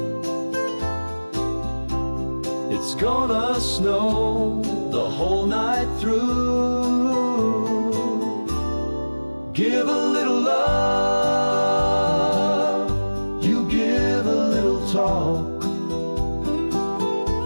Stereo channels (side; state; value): both; inverted; correlation -1.00